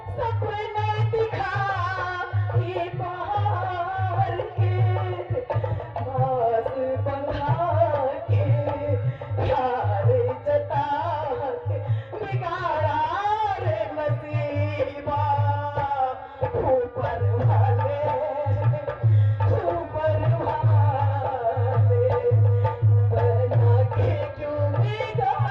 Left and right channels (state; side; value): identical; both; correlation 1.00